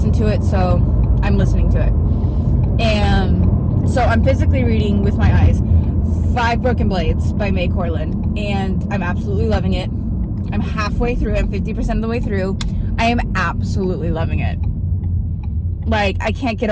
to it, so I'm listening to it. And so I'm physically reading with my eyes 5 Broken Blades by May Corland, and I'm absolutely loving it. I'm halfway through. I'm 50% of the way through. I am absolutely loving it. Like, I can't get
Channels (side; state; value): both; identical; correlation 1.00